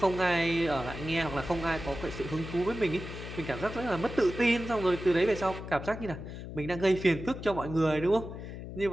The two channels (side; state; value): left; noise; hum, 10 dB below the sound